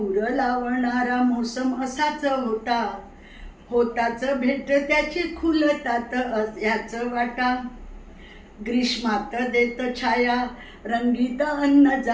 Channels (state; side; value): identical; both; correlation 1.00